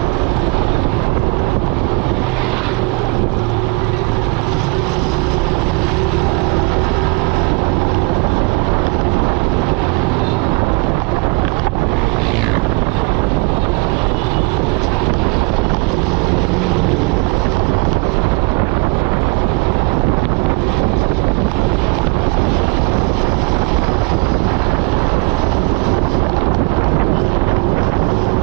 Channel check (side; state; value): left; quieter; 26.7 dB